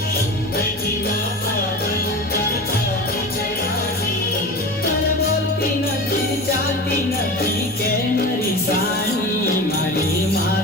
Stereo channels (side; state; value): left; noise; hum, 26 dB below the sound